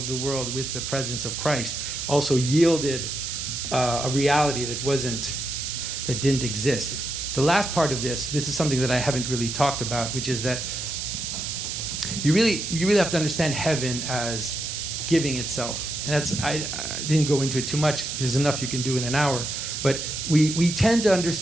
the world with the presence of Christ also yielded a reality that didn't exist. The last part of this is something that I haven't really talked about, which is that you really have to understand heaven as giving itself. And I didn't go into it too much. There's enough you can do in an hour. But we tend to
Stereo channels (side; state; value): right; noise; hiss, 4 dB below the sound